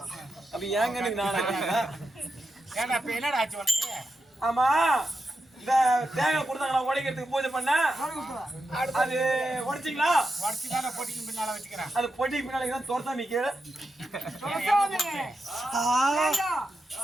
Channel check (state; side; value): normal; both; correlation 0.87